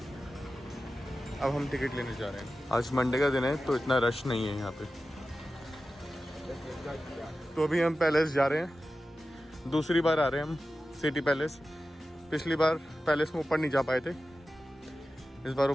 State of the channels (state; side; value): normal; both; correlation 0.94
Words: अब हम टिकट लेने जा रहे हैं। आज मंडे का दिन है तो इतना रश नहीं है यहाँ पे। तो अभी हम पैलेस जा रहे हैं। दूसरी बार आ रहे हैं हम सिटी पैलेस। पिछली बार पैलेस में ऊपर नहीं जा पाए थे, इस बार